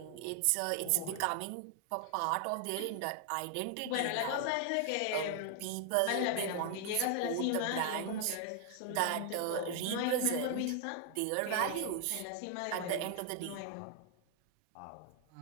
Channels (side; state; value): both; different; correlation 0.00